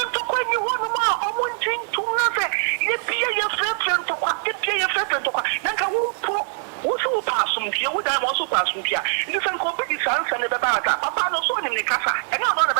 to call you one more or one thing to nothing. You be your friend to what? You be your friend to what? Then I won't pass from here. Would I also pass from here? You can copy the sons and the Baba. Papa no son in the casa. And I'm not a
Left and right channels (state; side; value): silent; left; 64 dB below the other